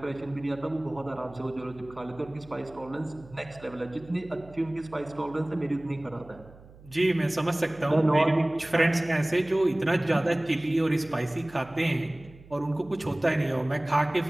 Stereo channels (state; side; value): noise; right; hum, 22 dB below the sound